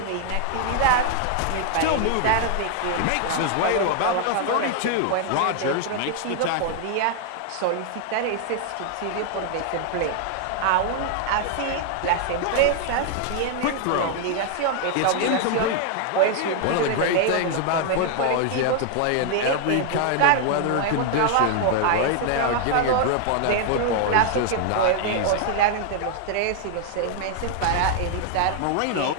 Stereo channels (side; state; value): both; different; correlation 0.00